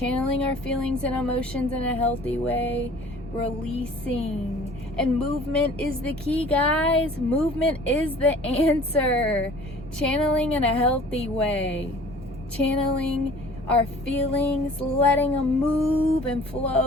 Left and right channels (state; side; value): normal; both; correlation 0.49